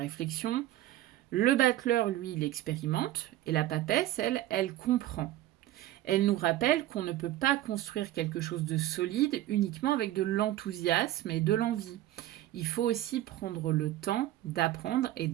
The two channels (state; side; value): quieter; left; 14.6 dB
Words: Le battleur, lui, il expérimente et la papesse, elle comprend. Elle nous rappelle qu'on ne peut pas construire quelque chose de solide uniquement avec de l'enthousiasme et de l'envie. Il faut aussi prendre le temps d'apprendre et